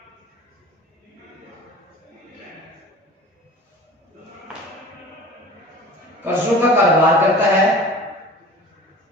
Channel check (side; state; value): both; normal; correlation 0.41